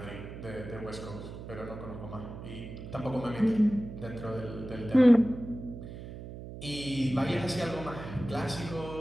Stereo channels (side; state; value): right; noise; hum, 11 dB below the sound